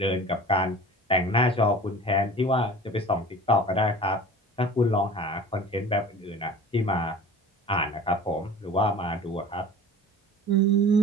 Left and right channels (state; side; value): normal; both; correlation 0.40